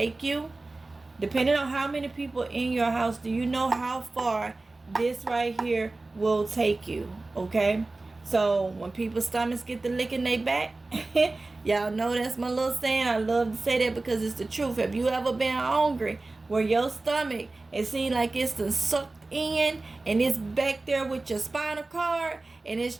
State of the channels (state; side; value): quieter; left; 3.2 dB